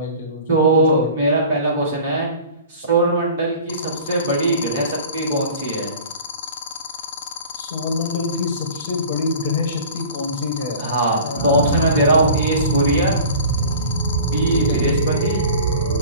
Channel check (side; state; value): both; inverted; correlation -0.42